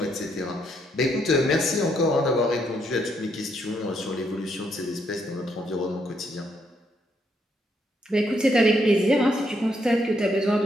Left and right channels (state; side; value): normal; both; correlation 0.75